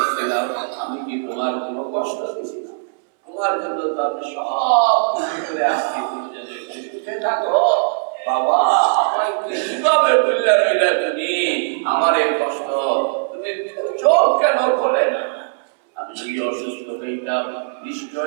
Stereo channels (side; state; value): left; silent; 66 dB below the other